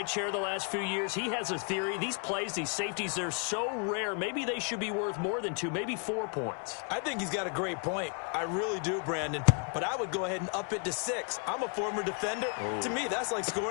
chair the last few years, he has a theory. These plays, these safeties, they're so rare. Maybe they should be worth more than 2, maybe 4 points. I think he's got a great point. I really do, Brandon. But I would go ahead and up it to 6. I'm a former defender. To me, that's like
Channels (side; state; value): right; quieter; 39.0 dB